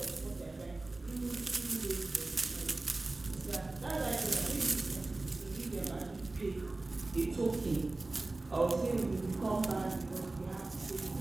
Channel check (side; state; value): left; quieter; 3.1 dB